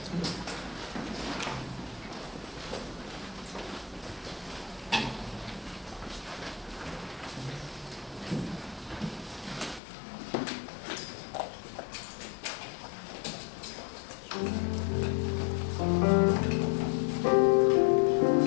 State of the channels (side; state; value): right; drops out; at 9.8 s